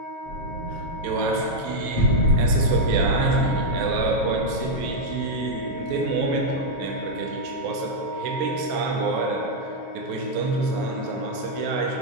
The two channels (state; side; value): late; left; 7.4 ms